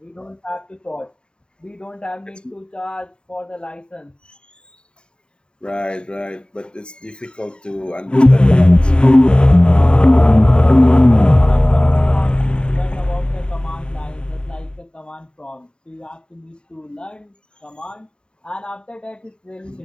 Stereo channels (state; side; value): late; right; 0.050 ms